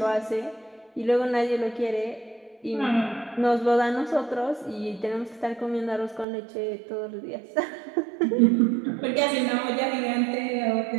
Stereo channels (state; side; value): drops out; left; at 6.2 s